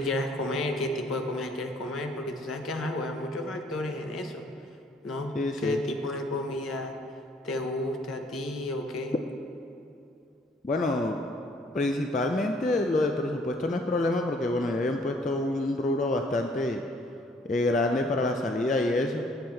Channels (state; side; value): normal; both; correlation 0.61